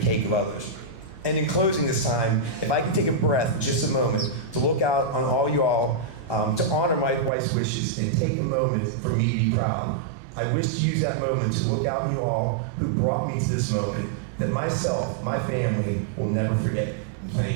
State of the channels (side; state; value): left; drops out; at 7.3 s